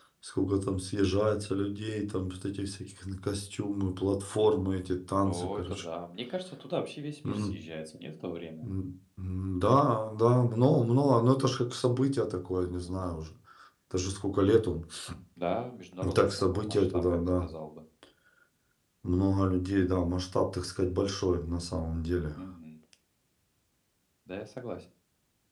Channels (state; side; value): identical; both; correlation 1.00